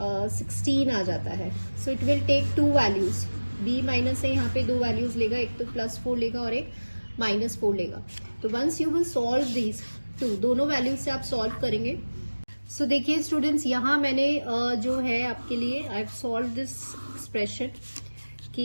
आ जाता है। So it will take 2 values, b-a यहाँ पे 2 वैल्यूज लेगा, एक तो +4 लेगा और एक -4 लेगा। तो once you will solve these two, दोनों वैल्यूज से आप सॉल्व करेंगे। सो देखिए स्टूडेंट्स, यहाँ मैंने जो है आपके लिए I have solve this expression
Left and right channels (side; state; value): both; inverted; correlation -1.00